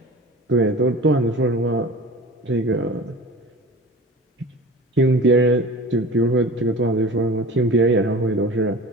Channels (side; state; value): both; normal; correlation 0.37